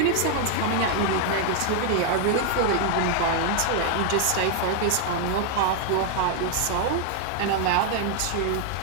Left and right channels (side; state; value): both; different; correlation 0.00